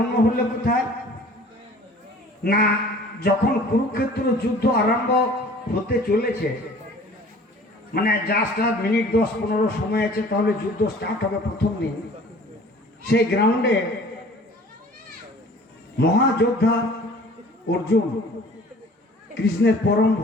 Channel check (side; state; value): both; normal; correlation 0.49